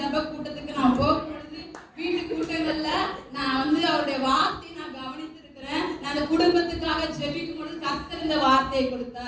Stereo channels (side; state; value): both; identical; correlation 1.00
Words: கூட்டத்துக்கு நான் போகும் பொழுது வீட்டு கூட்டங்கள்ல நான் வந்து அவருடைய வார்த்தையை நான் கவனித்திருக்கிறேன். நான் அந்த குடும்பத்துக்காக ஜெபிக்கும் பொழுது கர்த்தர் இந்த வார்த்தையை